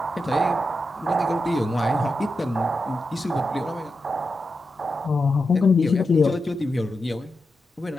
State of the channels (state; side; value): normal; both; correlation 0.88